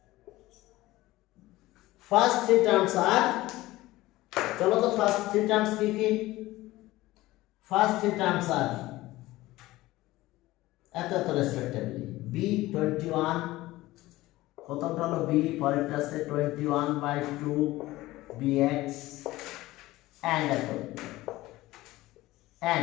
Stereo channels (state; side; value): quieter; right; 17.9 dB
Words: terms are চলো তো first 3 terms কি কি? ফার্স্ট 3 টার্মস আর এত রেসপেক্টিভলি b21, প্রথমটা হলো b, পরেরটা আছে 21/2 bx and এত